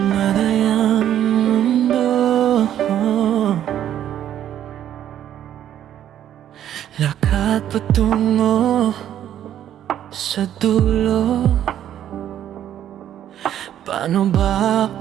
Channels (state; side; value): quieter; left; 10.9 dB